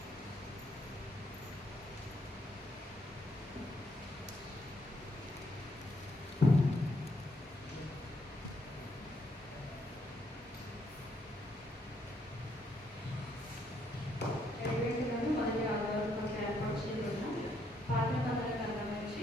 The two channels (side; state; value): both; normal; correlation 0.74